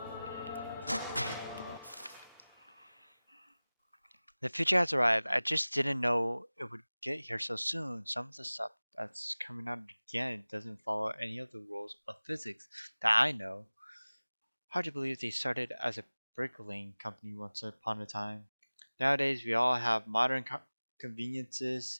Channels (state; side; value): inverted; both; correlation -0.99